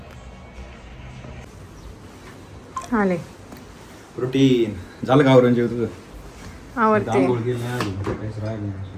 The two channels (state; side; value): identical; both; correlation 1.00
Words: आले प्रोटीन झालं का आवरून जेव तुझं? आवडते.